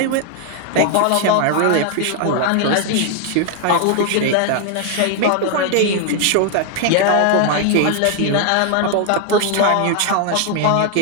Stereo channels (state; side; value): different; both; correlation 0.00